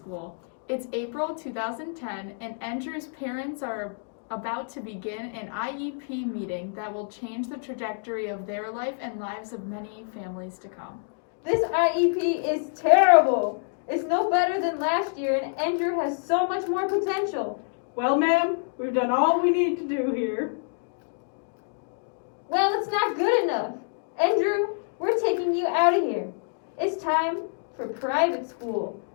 It's April 2010 and Endrew's parents are about to begin an IEP meeting that will change the trajectory of their life and lives of many families to come. This IEP is terrible. It's no better than last year and Endrew has so much more potential. Well, ma'am, we've done all we need to do here. Well, it's not good enough. Endrew, we're taking you out of here. It's time for private school.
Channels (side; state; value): right; silent; digital silence